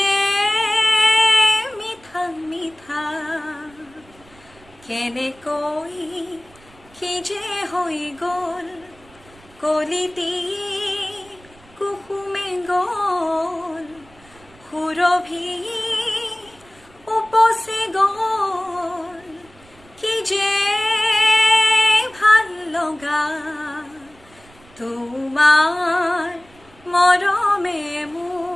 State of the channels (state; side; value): noise; right; rumble, 27 dB below the sound